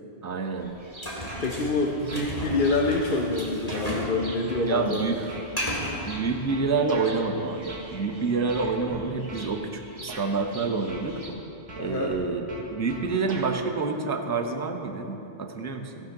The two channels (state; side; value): late; right; 1.8 ms